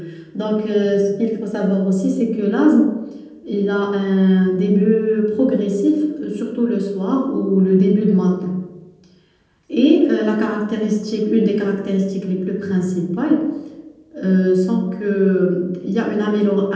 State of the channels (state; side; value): identical; both; correlation 1.00